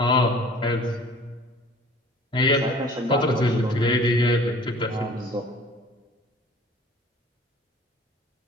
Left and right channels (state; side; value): normal; both; correlation 0.48